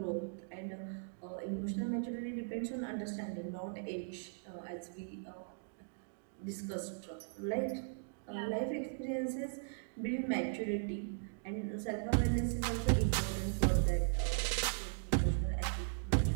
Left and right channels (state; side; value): silent; left; digital silence